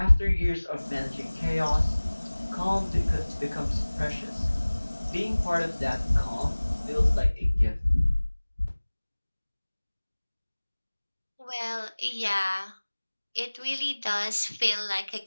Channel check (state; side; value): inverted; both; correlation -1.00